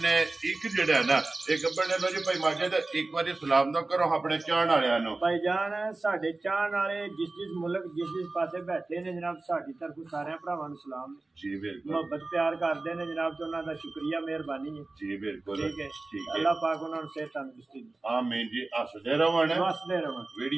ने एक जेड़ा है ना एक गब्बन ने। लो जी भाई माजिद एक बार सलाम दो करो अपने चाहण वालियां नु। भाई जान साडे चाहण वाले जिस मुल्क जिस पासे बैठे ने जनाब साडी तरफ सारे भरावां नूं सलाम जी बिल्कुल मोहब्बत प्यार करते हैं जनाब तो उन्हों का शुक्रिया मेहरबानी है जी बिल्कुल ठीक है अल्लाह पाक उन्होंने सेहत तंदुरुस्ती दे। आमीन जी। हसदे रहन हसदे रहन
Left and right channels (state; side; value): quieter; left; 3.2 dB